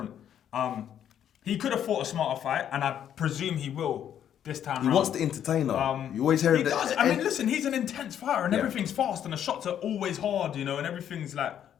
He could have fought a smarter fight, and I presume he will this time. He wants to entertain her. You always hear he that. does. I mean, listen, he's an intense fighter, and everything's fast, and the shots are always hard, and everything's like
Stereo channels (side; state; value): right; quieter; 9.8 dB